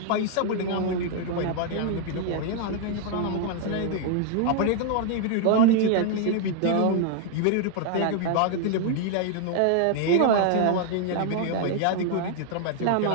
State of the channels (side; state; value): both; different; correlation 0.00